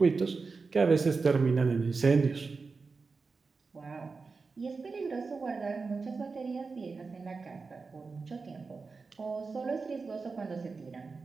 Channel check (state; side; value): quieter; left; 4.4 dB